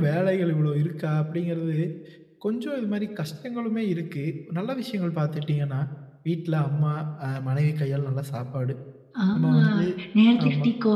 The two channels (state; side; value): identical; both; correlation 1.00